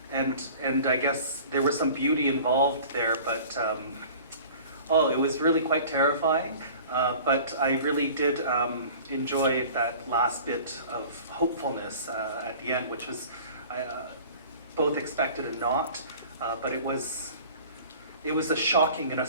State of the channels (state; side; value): inverted; both; correlation -0.44